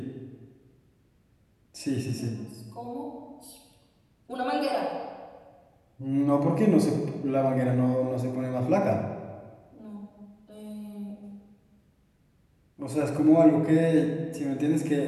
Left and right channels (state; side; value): identical; both; correlation 1.00